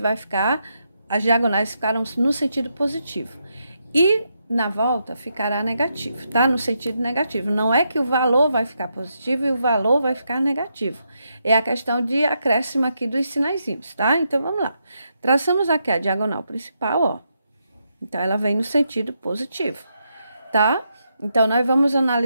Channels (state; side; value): inverted; both; correlation -0.81